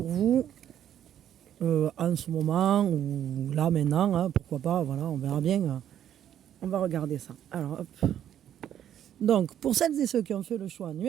vous en ce moment ou là maintenant, hein, pourquoi pas, voilà, on verra bien. On va regarder ça. Alors, hop. Donc, pour celles et ceux qui ont fait le choix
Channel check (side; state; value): left; quieter; 10.4 dB